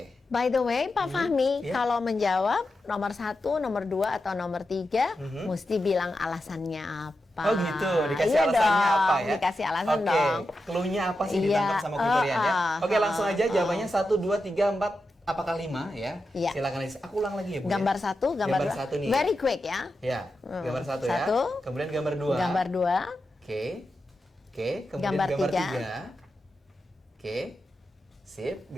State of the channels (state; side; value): normal; both; correlation 0.89